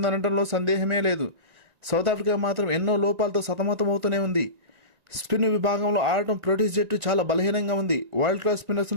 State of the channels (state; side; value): late; left; 1.9 ms